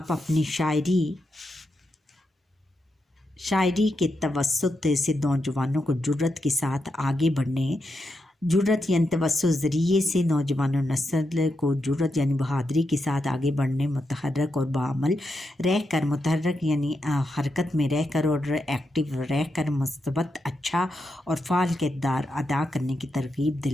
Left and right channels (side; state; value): both; normal; correlation 0.85